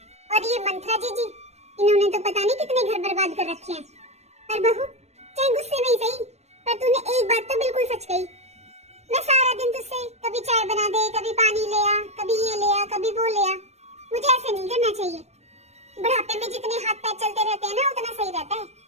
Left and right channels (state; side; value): late; left; 0.31 ms